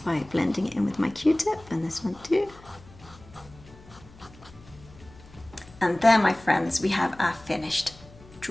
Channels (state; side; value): noise; left; hum, 22 dB below the sound